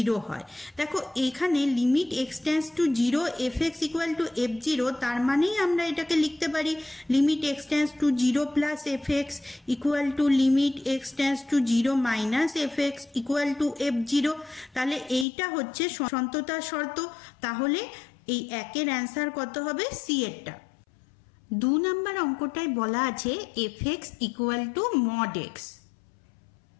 হয়। দেখো এখানে limit x tends to 0 f x equal two F 0, তার মানেই আমরা এটাকে লিখতে পারি limit x tends to 0 plus f x equal to limit x tends to 0 minus f x equal two F 0। তাহলে এইটা হচ্ছে সন্ততার শর্ত। তাহলে এই একের অ্যান্সার কত হবে? সি এরটা। 2 নাম্বার অঙ্কটাই বলা আছে F x equal two mod x.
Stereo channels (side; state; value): right; drops out; at 15.2 s